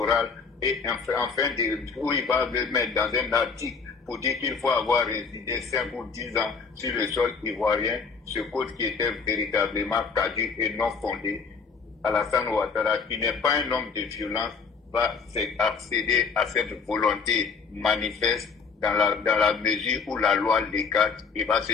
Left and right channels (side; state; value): right; quieter; 5.3 dB